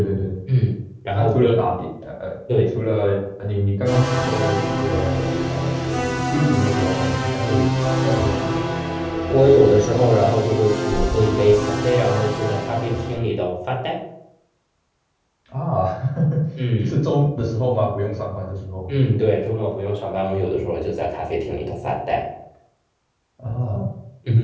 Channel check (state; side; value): identical; both; correlation 1.00